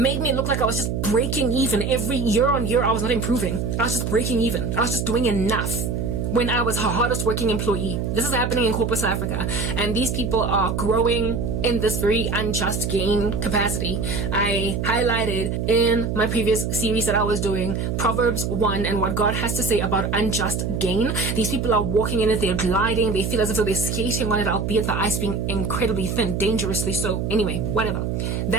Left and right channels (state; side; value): noise; right; hum, 1 dB below the sound